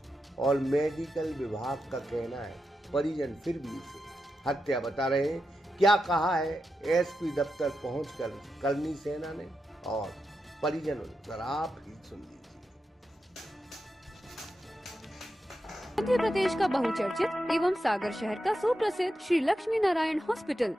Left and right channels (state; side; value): normal; both; correlation 0.88